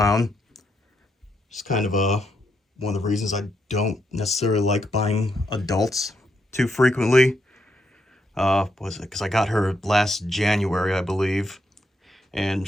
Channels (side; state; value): both; normal; correlation 0.79